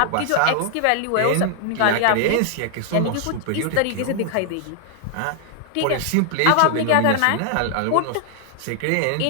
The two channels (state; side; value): different; both; correlation 0.00